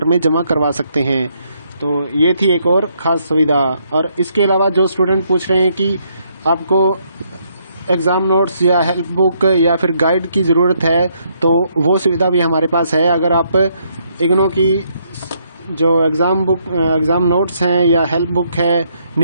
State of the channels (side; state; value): both; inverted; correlation -0.72